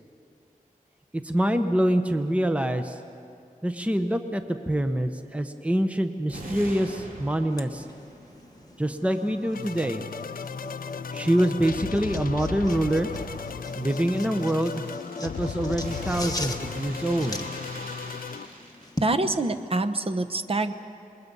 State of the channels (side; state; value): both; normal; correlation 0.86